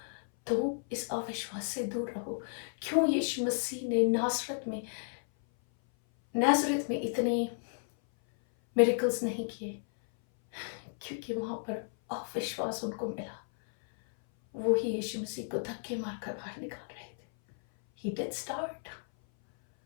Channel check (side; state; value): right; silent; 56 dB below the other